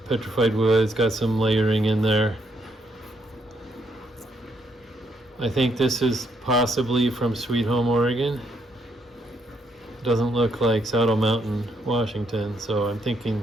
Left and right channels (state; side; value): normal; both; correlation 0.74